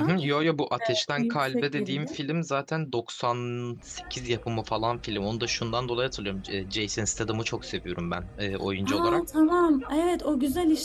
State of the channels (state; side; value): identical; both; correlation 1.00